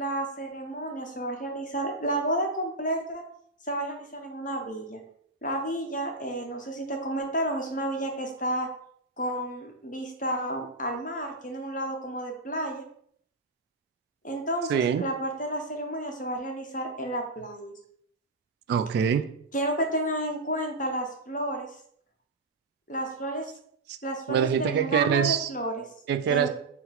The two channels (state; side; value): quieter; left; 3.1 dB